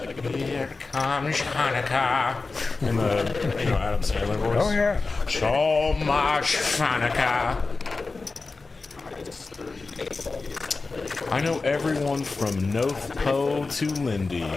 Here comes Hanukkah. In the, Adam Sandler voice. Oh, yeah. So much Hanukkah. I know everyone from North Po to Lindy.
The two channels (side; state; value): right; quieter; 3.9 dB